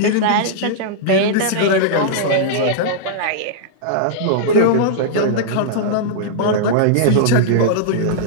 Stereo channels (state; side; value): different; both; correlation -0.02